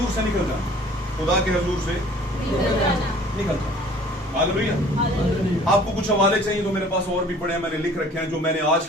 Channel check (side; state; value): both; normal; correlation 0.51